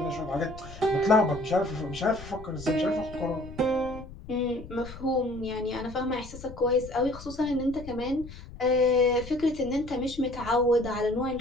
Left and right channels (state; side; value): noise; left; rumble, 15 dB below the sound